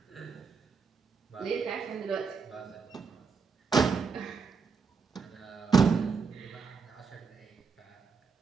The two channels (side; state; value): left; quieter; 5.4 dB